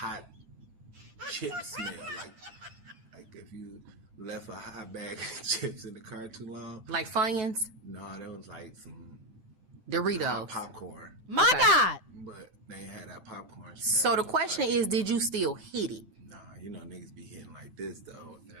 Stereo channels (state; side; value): late; left; 10 ms